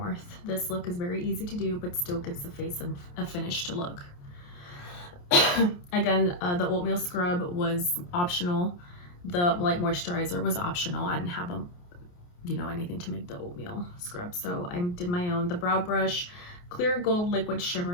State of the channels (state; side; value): late; right; 28 ms